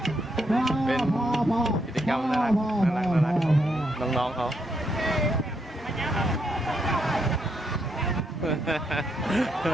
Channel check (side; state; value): both; normal; correlation 0.78